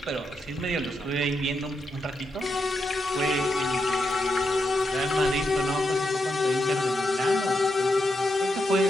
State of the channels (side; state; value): both; normal; correlation 0.84